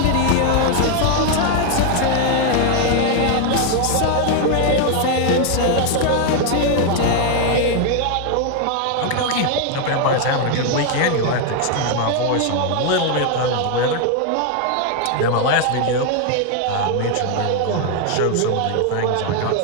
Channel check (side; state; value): both; different; correlation 0.01